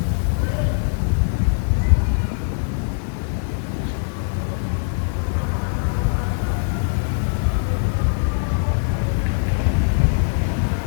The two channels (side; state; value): right; silent; 64 dB below the other